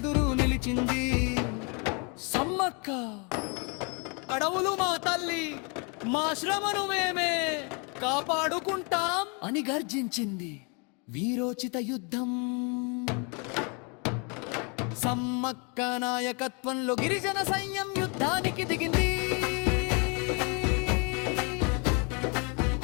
నిలిచింది సమ్మక్క. అడవులు మా తల్లి, మా శ్రమను మేమే కాపాడుకుంటాం అని గర్జించింది. వీరోచిత యుద్ధం. సమ్మక్క నాయకత్వంలో గిరిజన సైన్యం యుద్ధానికి దిగింది.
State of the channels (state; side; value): quieter; right; 33.7 dB